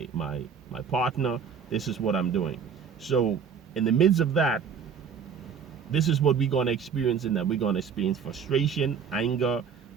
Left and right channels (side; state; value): left; quieter; 6.8 dB